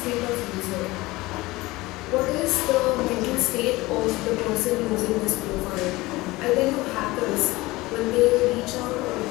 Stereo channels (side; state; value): right; quieter; 20.4 dB